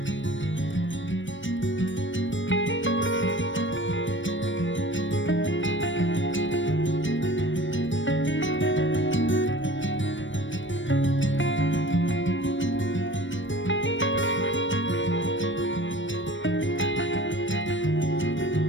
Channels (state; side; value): late; right; 0.56 ms